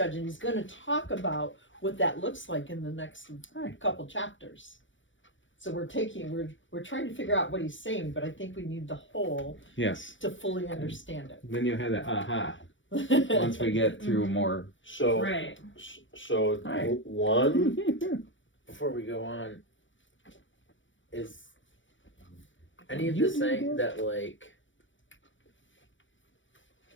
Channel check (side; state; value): right; late; 0.56 ms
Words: And he's going to talk about what that looks like in the next couple chapters. So we're trying to figure out what he's saying, but I think we need the whole Yes. to fully understand Then you'll have that aha it. once we get through more. so, Right. so Hi. one, Before we go on, is any of this saying that, like,